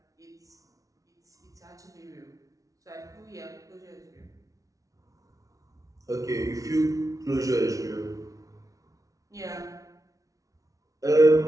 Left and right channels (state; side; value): late; left; 0.17 ms